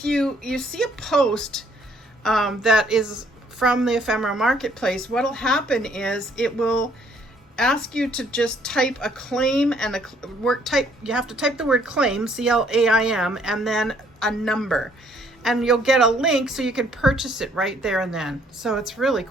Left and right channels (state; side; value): normal; both; correlation 0.64